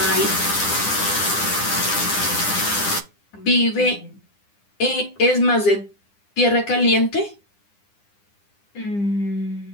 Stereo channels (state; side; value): late; right; 9.9 ms